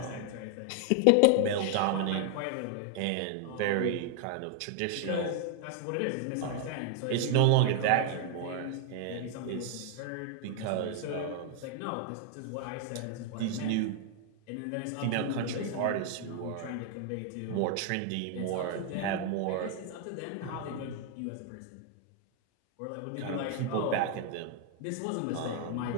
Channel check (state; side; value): different; both; correlation 0.00